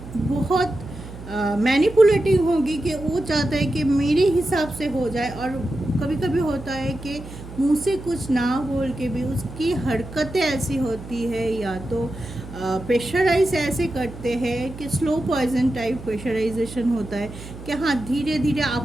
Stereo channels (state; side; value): noise; right; hum, 14 dB below the sound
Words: बहुत मैनिपुलेटिव होगी, कि वो चाहता है कि मेरे हिसाब से हो जाए, और कभी कभी होता है कि मुंह से कुछ ना बोल के भी उसकी हरकतें ऐसी होती है, या तो प्रेशराइज ऐसे करते हैं कि स्लो पॉइजन टाइप प्रेशराइजेशन होता है कि हाँ धीरे धीरे